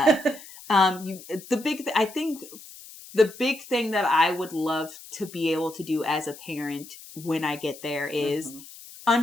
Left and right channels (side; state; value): left; noise; hiss, 17 dB below the sound